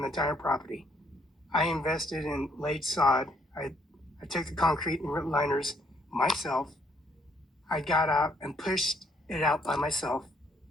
the entire property. I invested in laid sod. I took the concrete and liners myself. I got out and pushed it out by myself.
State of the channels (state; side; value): normal; both; correlation 0.68